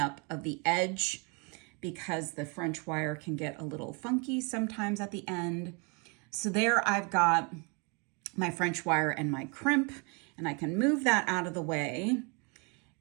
of the edge because the French wire can get a little funky sometimes at the end. So there I've got my French wire and my crimp, and I can move that out of the way.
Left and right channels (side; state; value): left; quieter; 32.8 dB